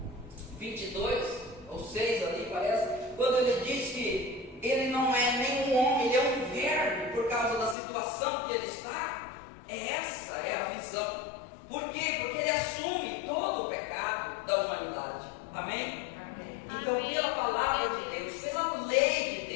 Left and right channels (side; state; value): right; drops out; at 7.8 s